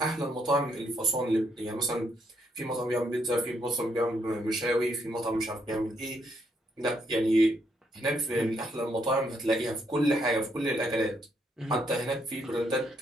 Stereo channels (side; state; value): both; normal; correlation 0.74